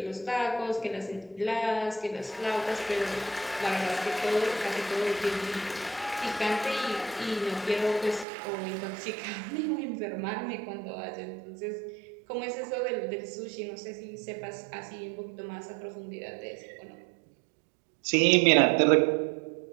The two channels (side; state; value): left; drops out; at 8.2 s